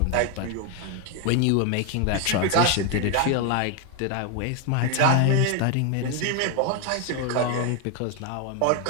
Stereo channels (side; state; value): both; different; correlation 0.01